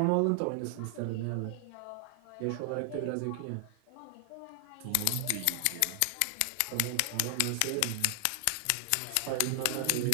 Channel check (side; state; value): both; different; correlation 0.00